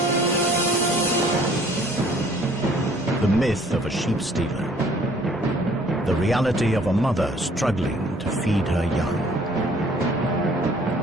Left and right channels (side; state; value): both; normal; correlation 0.57